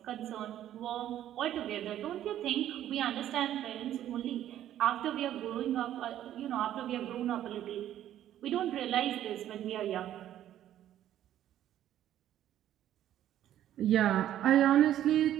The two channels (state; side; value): quieter; left; 11.8 dB